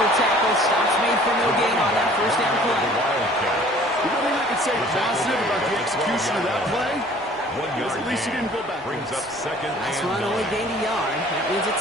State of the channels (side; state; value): both; normal; correlation 0.52